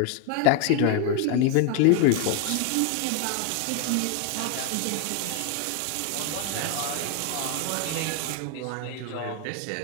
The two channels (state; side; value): different; both; correlation 0.01